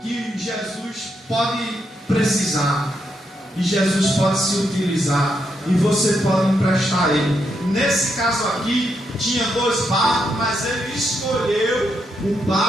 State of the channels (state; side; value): normal; both; correlation 0.80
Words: que Jesus pode precisar, e Jesus pode se utilizar, e você pode emprestar ele. Nesse caso aqui tinha 2 barcos, mas ele escolheu o